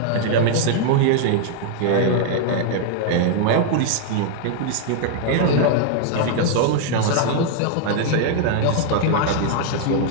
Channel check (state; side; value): different; both; correlation 0.00